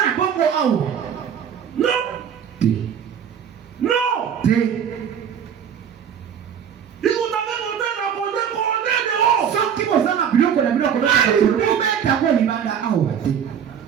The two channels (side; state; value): left; quieter; 8.2 dB